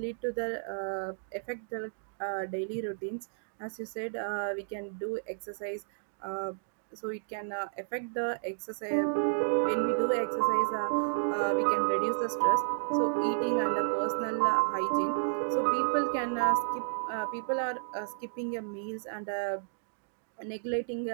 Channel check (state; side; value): silent; left; digital silence